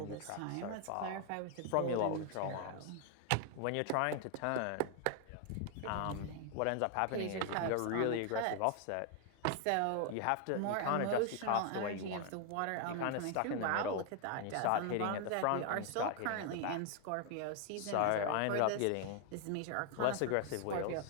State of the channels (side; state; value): both; different; correlation 0.00